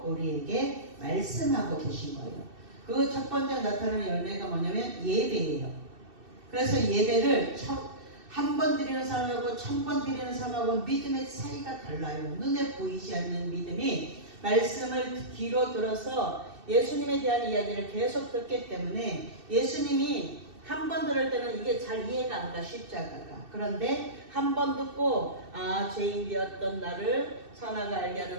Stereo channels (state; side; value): late; left; 2.6 ms